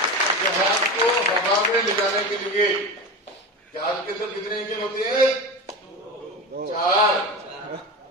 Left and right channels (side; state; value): both; normal; correlation 0.26